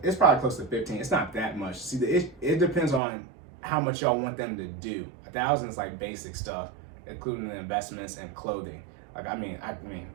probably close to 15. It's not that much. See, it depends on how much y'all want them to do. $1,000 is like basic stuff, including the investments and clothing. Like I mean,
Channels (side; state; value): left; drops out; at 3.0 s